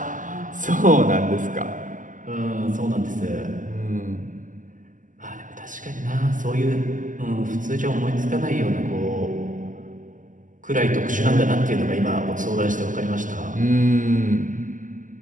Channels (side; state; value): left; late; 0.38 ms